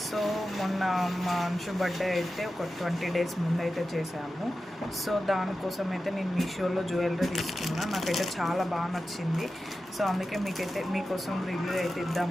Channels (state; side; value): normal; both; correlation 0.93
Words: సో మొన్న మా అంశు బర్త్డే అయితే ఒక 20 days ముందు అయితే చేశాము. సో దానికోసం అయితే నేను మీషోలో జ్యువెలరీ తీసుకున్నా. నాకైతే చాలా బాగా నచ్చింది. సో అందుకే మీకోసం రివ్యూ అయితే